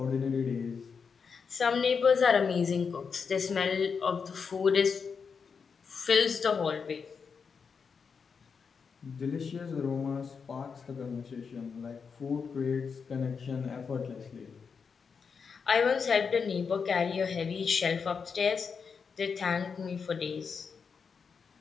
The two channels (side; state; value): right; quieter; 5.8 dB